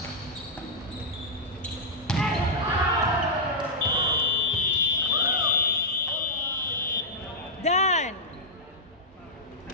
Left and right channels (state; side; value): normal; both; correlation -0.10